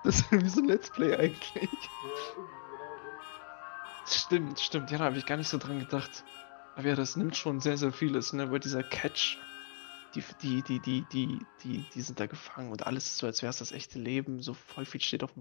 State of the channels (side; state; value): right; silent; 54 dB below the other